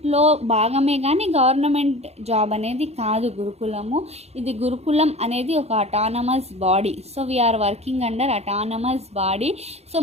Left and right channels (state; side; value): late; left; 0.31 ms